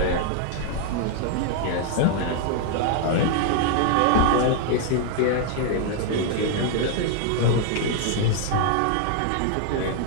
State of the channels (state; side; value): different; both; correlation 0.00